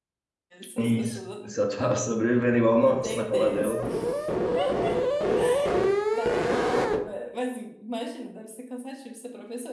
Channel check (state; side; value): identical; both; correlation 1.00